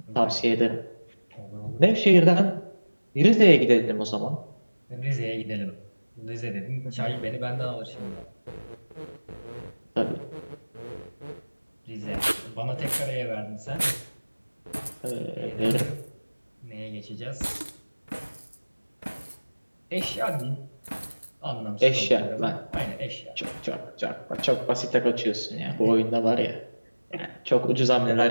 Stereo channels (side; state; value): both; inverted; correlation -1.00